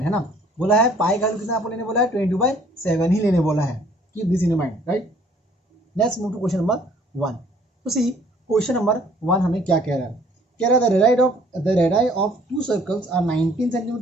है ना, बोला है पाई का कितना आपको लेने बोला है, 22/7 ही लेने बोला है. Keep this in mind, right. Let's move to question number 1. तो सी क्वेश्चन नंबर 1 हमें क्या कह रहा है, कह रहा है the radii of 2 circles are 19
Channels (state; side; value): normal; both; correlation 0.58